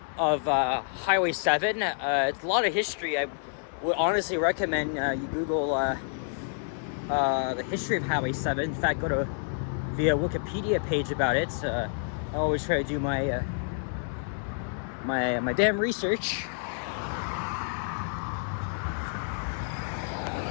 of Highway 7. It's a lot of history. I would honestly recommend you Google the history of Highway 7. In fact, go to the Wikipedia page about it. I always try to do my damn research.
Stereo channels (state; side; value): silent; right; 59 dB below the other